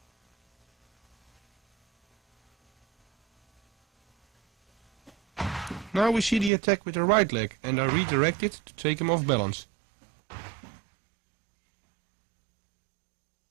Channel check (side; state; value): left; drops out; at 6.5 s